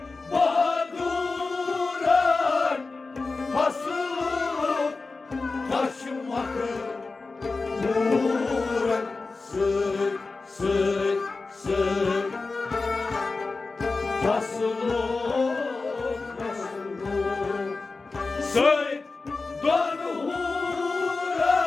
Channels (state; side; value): quieter; right; 3.8 dB